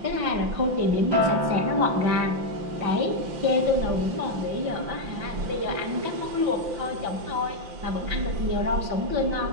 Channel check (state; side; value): late; left; 5.8 ms